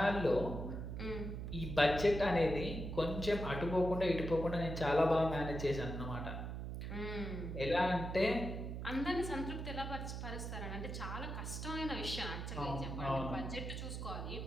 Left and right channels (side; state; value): right; noise; hum, 5 dB below the sound